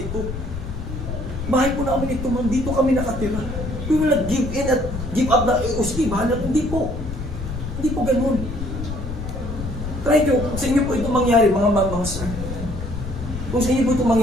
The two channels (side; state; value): left; noise; rumble, 7 dB below the sound